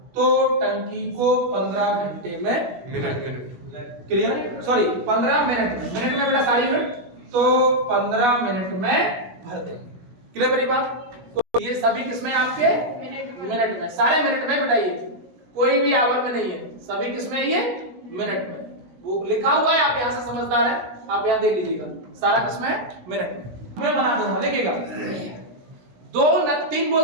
तो टंकी को 15 घंटे में मिनट क्लियर, सॉरी 15 मिनट में बेटा सारी यूनिट, तो 15 मिनट में भर देंगे। क्लियर मेरी बात? तो ये सभी किसमें आपके मिनट में, सारे मिनट में बेटा, ये कोई भी आवर में नहीं है, सभी किसमें? ये मिनट में। वो लिखा हुआ है, आप यहां से समझदार है, आप यहां देख लीजिएगा, सारा किसमें? मिनट में। मैं बना दूंगा, देखिएगा 2 नल 3 बोल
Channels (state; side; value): late; left; 17 ms